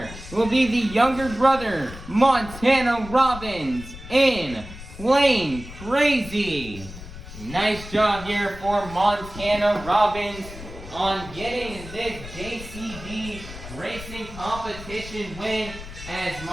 will be the younger brother, Montana Robbins in Plain Krazy. Nice job here for Montana Robbins on getting this JCB Racing Competition win, as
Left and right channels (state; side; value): noise; left; rumble, 13 dB below the sound